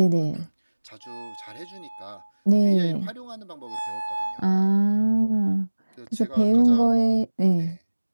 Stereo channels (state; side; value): inverted; both; correlation -1.00